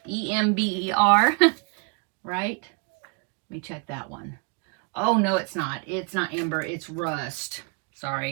E-M-B-E-R, right? Let me check that one. Oh, no, it's not. It's not Ember, it's Rust.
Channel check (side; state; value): left; quieter; 32.3 dB